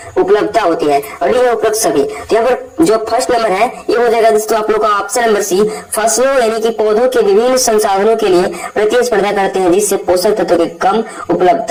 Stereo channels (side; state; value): both; identical; correlation 1.00